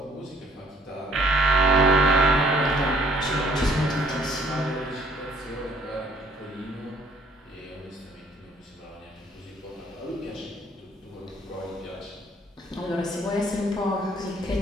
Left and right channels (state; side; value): normal; both; correlation 0.61